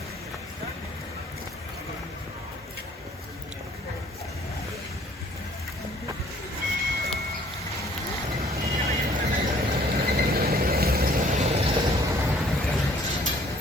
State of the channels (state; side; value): normal; both; correlation 0.58